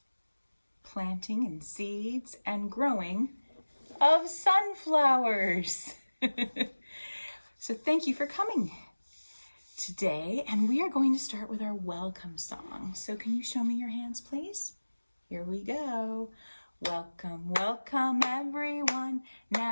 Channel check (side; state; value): both; inverted; correlation -1.00